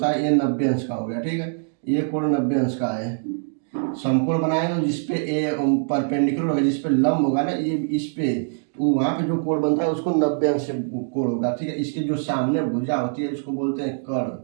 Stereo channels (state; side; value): silent; left; digital silence